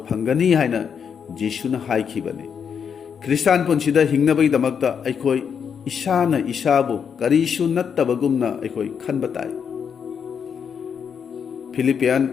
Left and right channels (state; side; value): quieter; right; 7.1 dB